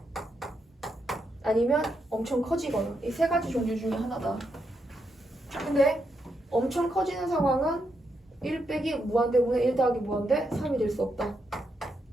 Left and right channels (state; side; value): normal; both; correlation 0.81